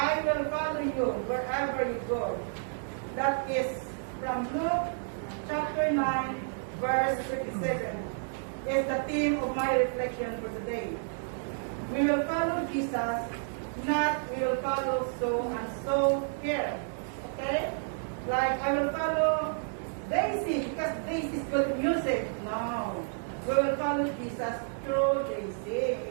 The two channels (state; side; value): silent; left; digital silence